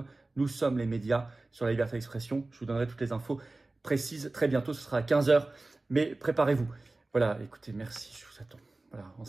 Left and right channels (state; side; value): quieter; left; 3.1 dB